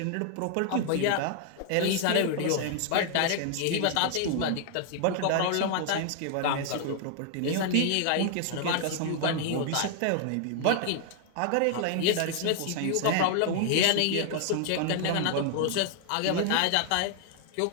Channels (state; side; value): different; both; correlation 0.00